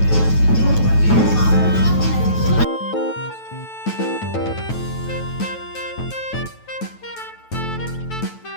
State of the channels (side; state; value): right; late; 9.1 ms